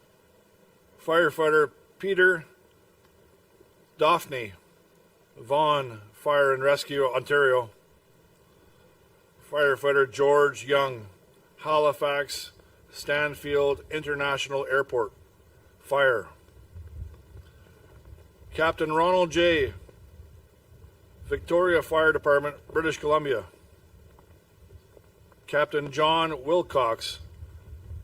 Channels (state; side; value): identical; both; correlation 1.00